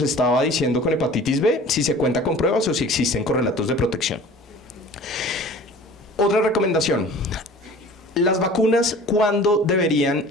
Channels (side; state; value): both; normal; correlation 0.44